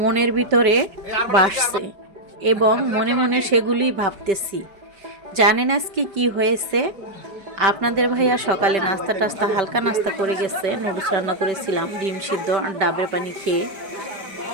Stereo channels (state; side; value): late; left; 5.1 ms